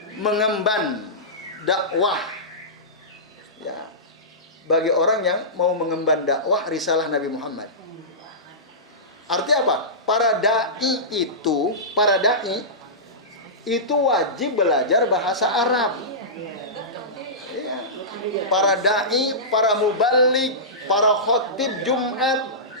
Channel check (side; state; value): both; normal; correlation -0.19